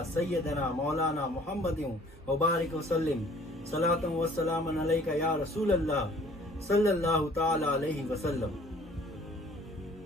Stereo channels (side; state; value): both; normal; correlation 0.54